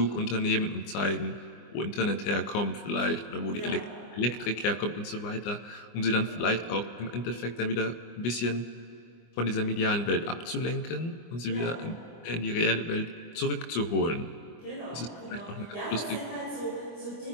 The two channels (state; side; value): late; right; 24 ms